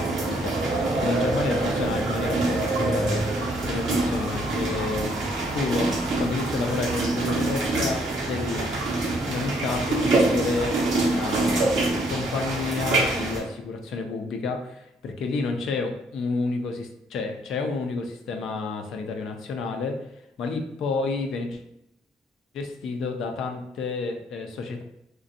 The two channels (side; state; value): both; normal; correlation 0.66